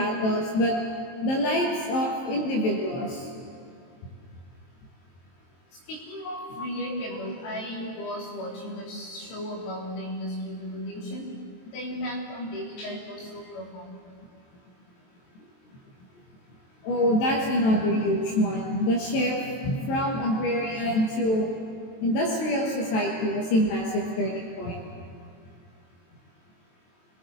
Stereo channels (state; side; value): late; right; 23 ms